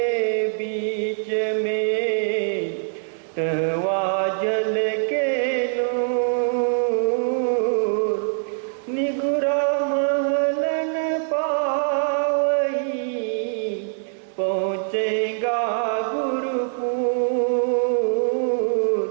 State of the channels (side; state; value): left; silent; digital silence